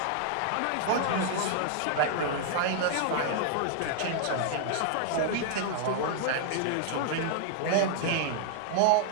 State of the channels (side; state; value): both; different; correlation -0.01